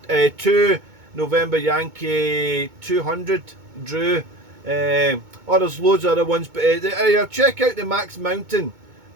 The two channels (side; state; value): left; late; 2.2 ms